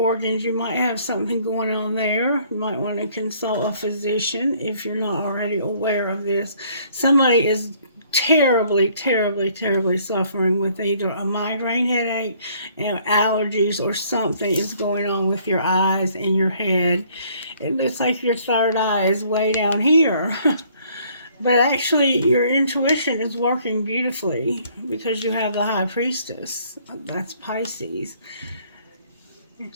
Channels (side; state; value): both; inverted; correlation -0.61